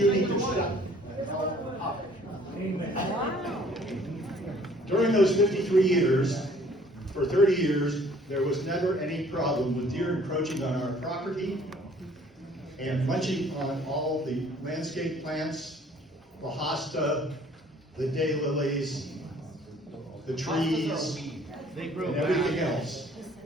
need to shut the hell up. During those 53 years, for 30 years, there was never any problem with deer encroaching on our property and munching on all the landscape plants, the hosta, the daylilies, the trees, and everything else.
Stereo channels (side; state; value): both; normal; correlation 0.57